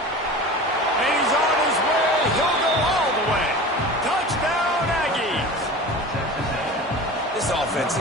And he's on his way. He'll go all the way. Touchdown, Aggies. This offense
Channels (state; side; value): normal; both; correlation 0.35